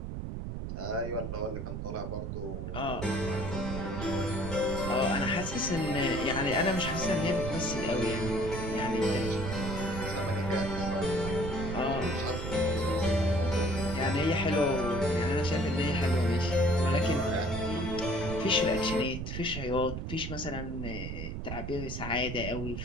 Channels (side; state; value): right; noise; rumble, 5 dB below the sound